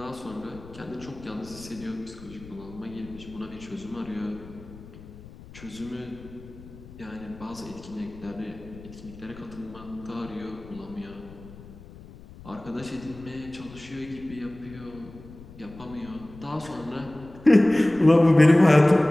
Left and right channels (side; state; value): left; noise; rumble, 18 dB below the sound